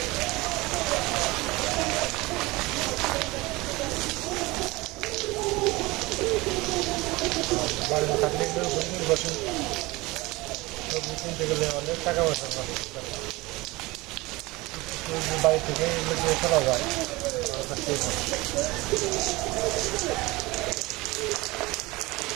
বাড়ি না থাকলে বসে সবজি কিনতে গেলে অনেক টাকা পয়সা লাগে। বাড়ি থেকে এগুলো চলা যায়।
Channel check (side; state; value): left; quieter; 21.9 dB